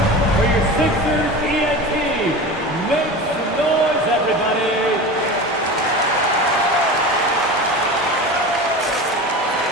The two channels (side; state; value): both; normal; correlation 0.30